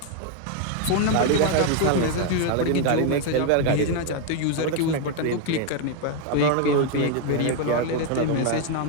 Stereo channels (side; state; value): both; different; correlation 0.01